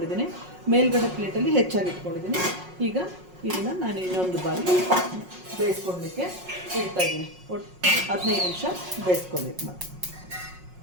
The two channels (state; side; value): late; left; 5.5 ms